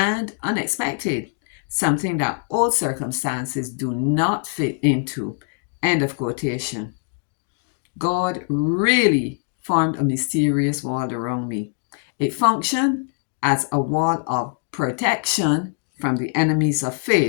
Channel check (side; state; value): right; silent; 55 dB below the other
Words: unexpected, something that old circumstances do not fit into. End of quotation. God really formed a mysterious wall around me. It functioned as a wall of protection from the enemies of